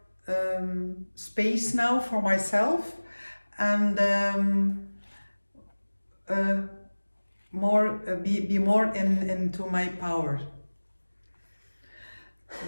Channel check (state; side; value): inverted; both; correlation -1.00